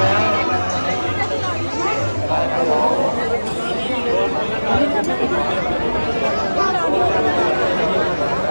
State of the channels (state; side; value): inverted; both; correlation -1.00